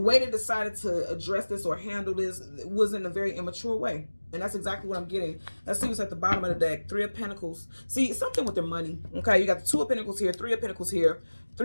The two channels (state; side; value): inverted; both; correlation -1.00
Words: they decided to address this or handle this was in a very immature way. And that's exactly what I'm getting. Let's see what's at the bottom of the deck. Three of Pentacles. See, something with their money. Okay, you got the Two of Pentacles here, Three of Pentacles here.